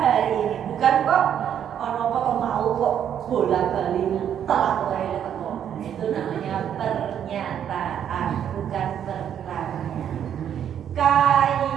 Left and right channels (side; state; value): left; quieter; 9.3 dB